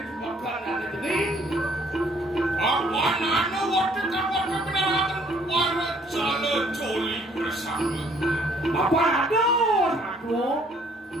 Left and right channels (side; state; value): both; normal; correlation 0.62